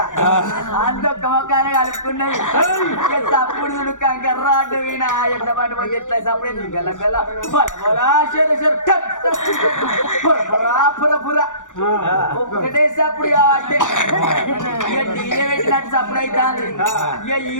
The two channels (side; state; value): right; late; 0.86 ms